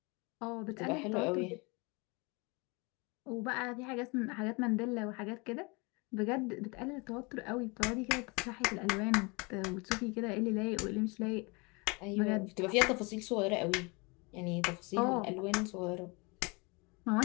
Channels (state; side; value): quieter; right; 28.6 dB